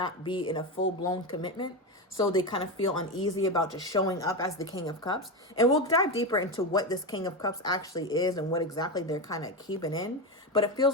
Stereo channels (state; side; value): normal; both; correlation 0.16